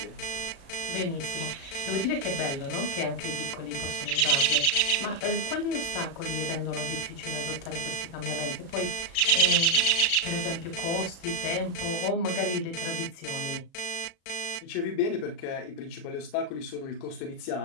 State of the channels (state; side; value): late; right; 36 ms